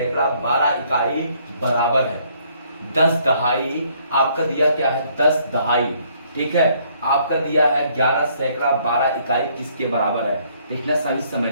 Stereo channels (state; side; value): inverted; both; correlation -0.66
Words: 12 इकाई बराबर है। 10 दहाई आपका दिया क्या है, 10 दहाई, ठीक है। आपका दिया है 11 सैकड़ा 12 इकाई किसके बराबर है। देखना, सही